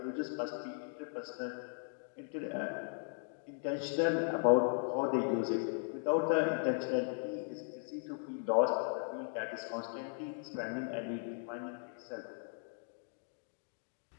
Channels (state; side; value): silent; right; 53 dB below the other